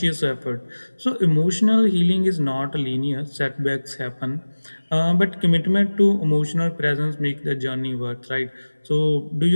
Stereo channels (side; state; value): both; inverted; correlation -1.00